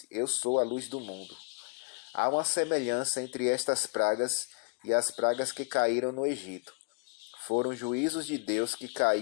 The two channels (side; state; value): right; quieter; 34.3 dB